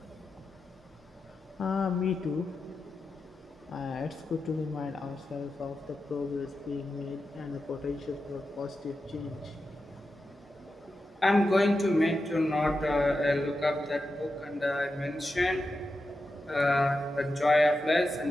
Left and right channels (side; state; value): both; normal; correlation 0.90